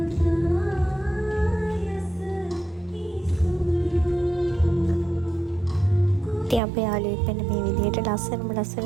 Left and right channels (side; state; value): left; drops out; at 6.6 s